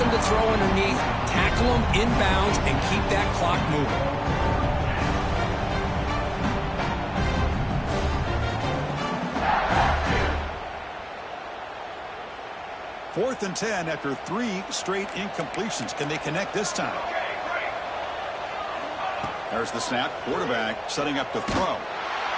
to throw underneath, tackle them inbounds, and keep that clock moving. Fourth and 10 after 3 straight incompletions. Can they connect this time? There's the snap. Quarterback setting up to throw.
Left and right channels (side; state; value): both; identical; correlation 1.00